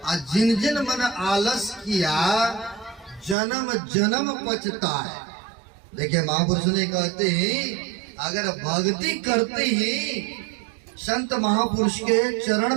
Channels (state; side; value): drops out; left; at 3.4 s